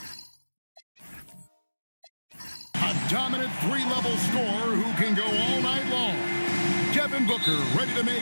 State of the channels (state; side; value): inverted; both; correlation -1.00